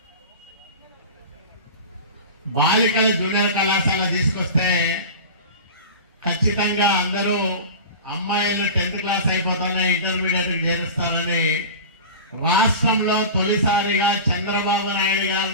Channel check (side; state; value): both; inverted; correlation -0.32